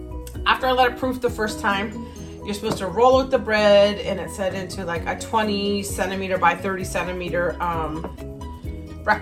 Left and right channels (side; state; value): both; identical; correlation 1.00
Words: after I let it proof the first time, you're supposed to roll out the bread, and it set into like a 20 centimeter by 30 centimeter